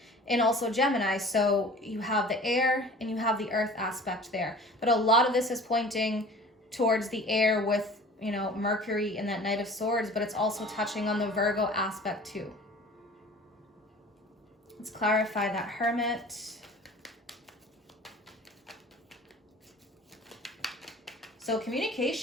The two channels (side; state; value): both; normal; correlation 0.43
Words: and also Gemini. So you have the air and you have the earth aspect there. But a lot of this is pointing towards the air with, Mercury and that Knight of Swords, but it's also touching on the Virgo aspect too. Let's clarify that Hermit. So